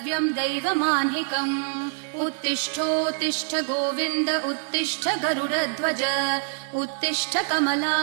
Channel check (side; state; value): left; silent; 60 dB below the other